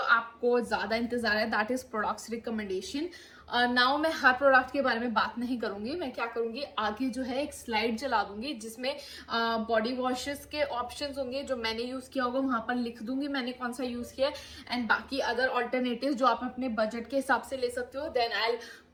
आपको ज्यादा इंतजार है, that is products recommendation. Now मैं हर प्रोडक्ट के बारे में बात नहीं करूंगी. मैं क्या करूंगी, आगे जो है एक स्लाइड चला दूंगी जिसमें बॉडी वॉशेस के ऑप्शंस होंगे जो मैंने यूज किया होगा, वहां पर लिख दूंगी मैंने कौन सा यूज किया, एंड बाकी अदर ऑल्टरनेटिव जो आप अपने बजट के हिसाब से ले सकते हो. Then I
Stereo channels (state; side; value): identical; both; correlation 1.00